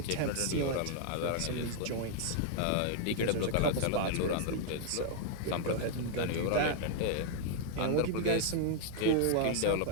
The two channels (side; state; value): both; different; correlation 0.00